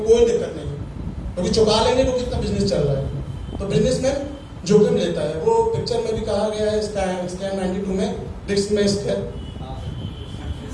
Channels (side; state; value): both; identical; correlation 1.00